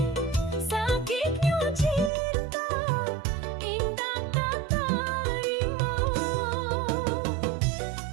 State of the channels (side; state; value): left; drops out; at 2.1 s